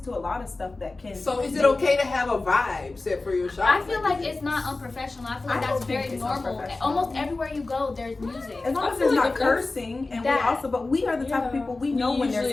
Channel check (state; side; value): quieter; right; 3.4 dB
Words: to a lot of stuff that can. So is it okay to have a vibe set for your shop? I feel like it's not unprofessional. I feel like I that's don't think very it's normal. unprofessional. Almost everywhere you go, there's music. As long I as feel there's like not if that's- cursing, and that- but we are the type of people, we know when there's